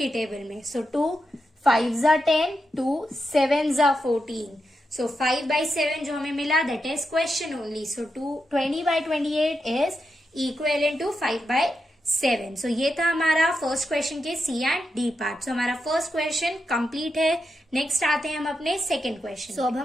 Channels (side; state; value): both; normal; correlation 0.86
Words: टेबल में। सो 2 5 जा 10, 2 7 जा 14। सो 5/7 जो हमें मिला, that is question only. So 20/28 is equivalent to 5/7। So ये था हमारा फर्स्ट क्वेश्चन के C and D part. So हमारा फर्स्ट क्वेश्चन कंप्लीट है। नेक्स्ट आते हैं हम अपने सेकंड क्वेश्चन। सो अब